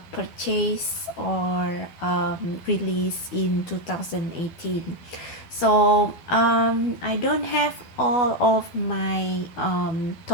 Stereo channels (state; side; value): late; right; 12 ms